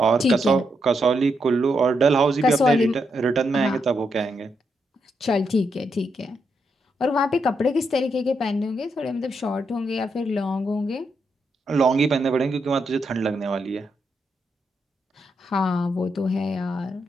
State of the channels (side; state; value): both; normal; correlation 0.81